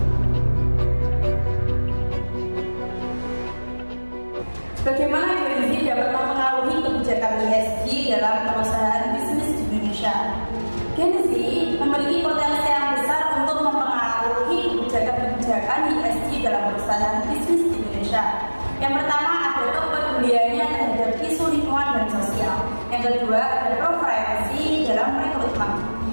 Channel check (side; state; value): both; inverted; correlation -1.00